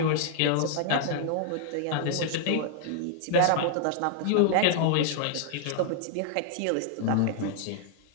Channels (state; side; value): different; both; correlation -0.01